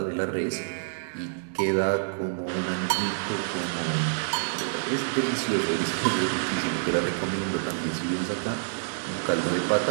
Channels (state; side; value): silent; left; digital silence